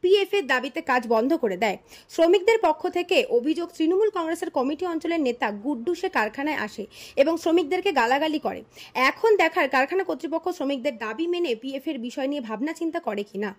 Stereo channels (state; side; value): identical; both; correlation 1.00